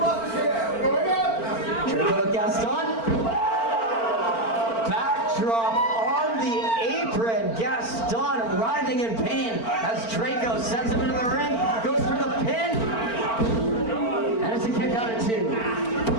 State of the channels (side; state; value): right; late; 4.4 ms